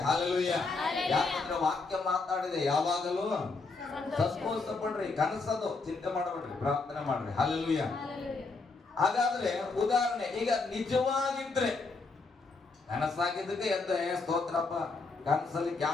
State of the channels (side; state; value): right; quieter; 4.0 dB